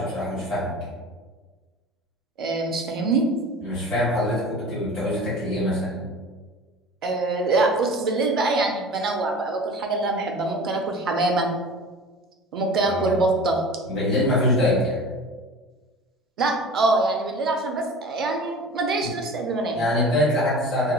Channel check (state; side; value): normal; both; correlation 0.38